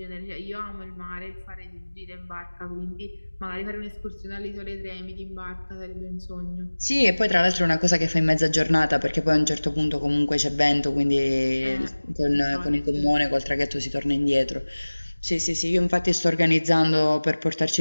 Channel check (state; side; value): inverted; both; correlation -1.00